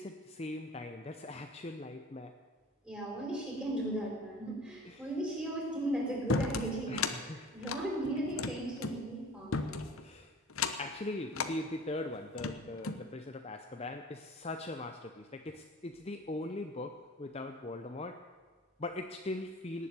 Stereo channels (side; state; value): both; normal; correlation 0.43